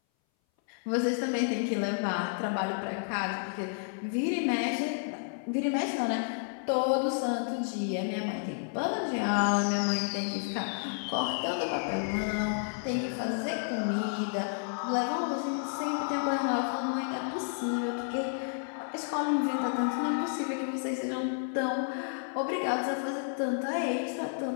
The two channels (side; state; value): right; silent; 57 dB below the other